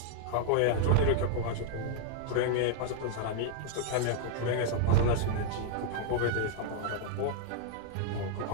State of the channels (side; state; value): both; different; correlation 0.00